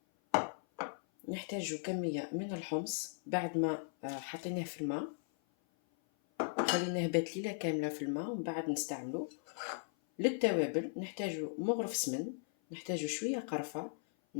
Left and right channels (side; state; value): right; silent; 53 dB below the other